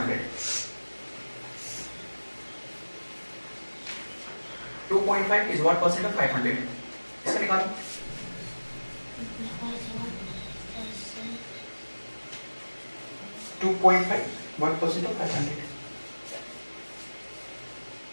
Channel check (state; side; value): inverted; both; correlation -1.00